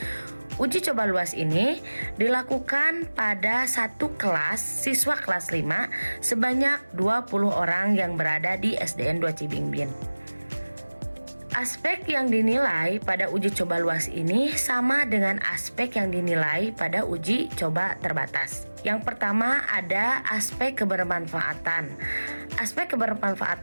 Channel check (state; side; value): inverted; both; correlation -1.00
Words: Uji coba luas ini dilakukan pada satu kelas siswa kelas 5 sebanyak 20 orang yang berada di SDN 2 Cibingbin. Aspek yang dinilai pada uji coba luas ini sama dengan aspek yang dinilai pada uji coba terbatas. Yang pertama ada aspek kebermanfaatan. Aspek